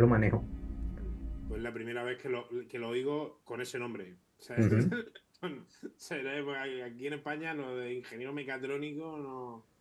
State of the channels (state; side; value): identical; both; correlation 1.00